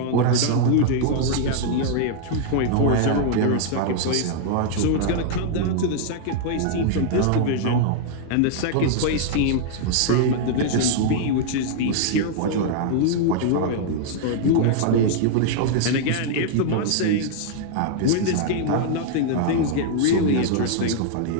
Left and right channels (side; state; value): both; different; correlation -0.01